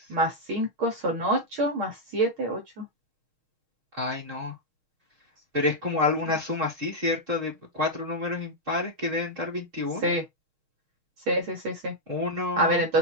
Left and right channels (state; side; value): late; left; 6.4 ms